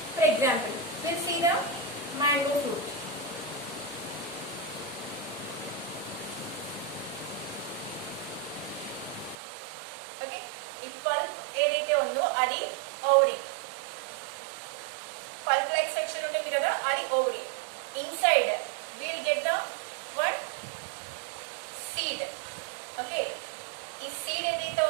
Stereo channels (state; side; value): drops out; left; at 9.3 s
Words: for example we'll see the mango fruit. Okay, ఈ పల్ప్ ఏదైతే ఉందో అది ఓవరీ. పల్ప్ లైక్ స్ట్రక్చర్ ఉంటుంది కదా, అది ovary. Inside we'll get the one seed. Okay, ఈ సీడ్ ఏదైతే